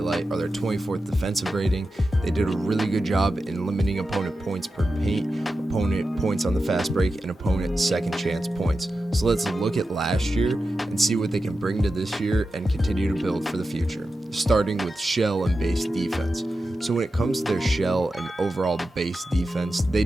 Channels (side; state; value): both; normal; correlation 0.91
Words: are their 24th defensive rating. They did a really good job in limiting opponent points per paint, opponent points on the fast break, and opponent second chance points. So let's look at last year and see what they can bring to this year and continue to build for the future, starting with shell and base defense. So when it comes to their shell and overall the base defense, they